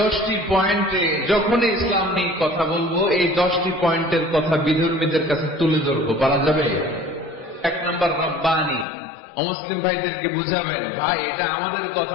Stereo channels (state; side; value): drops out; right; at 8.8 s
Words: পয়েন্টে যখনই ইসলাম নিয়ে কথা বলবো, এই 10টি পয়েন্টের কথা বিধর্মীদের কাছে তুলে ধরবো। পারা যাবে? 1 নম্বর রব্বানি। অমুসলিম ভাইদেরকে বুঝাবেন, ভাই এটা আমাদের